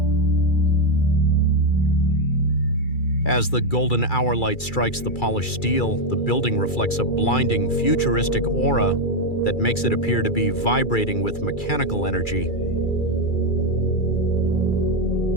As the golden hour light strikes the polished steel, the building reflects a blinding, futuristic aura that makes it appear to be vibrating with mechanical energy.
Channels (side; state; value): right; late; 2.3 ms